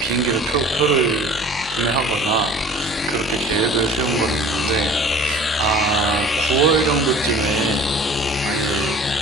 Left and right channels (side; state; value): both; normal; correlation 0.46